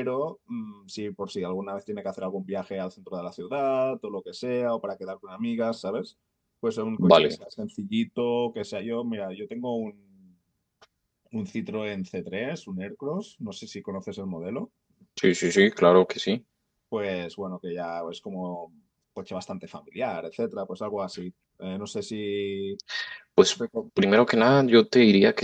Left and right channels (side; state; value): both; identical; correlation 1.00